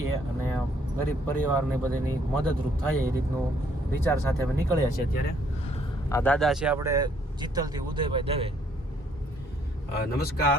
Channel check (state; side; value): normal; both; correlation 0.66